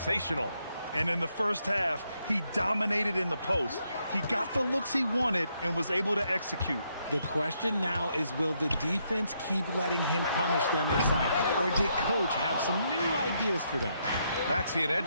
And in the first half, he dominated in the post. He got the looks he wanted and was able to execute. The question now is, will the defense keep letting him punish them inside? Or did Coach have some new ideas for them? Maxey and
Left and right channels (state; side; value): inverted; both; correlation -0.76